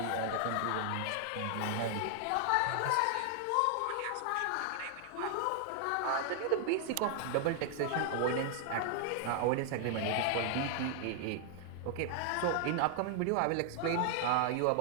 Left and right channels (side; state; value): both; different; correlation 0.00